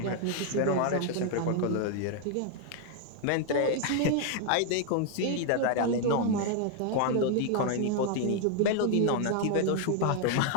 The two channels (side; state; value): both; different; correlation 0.00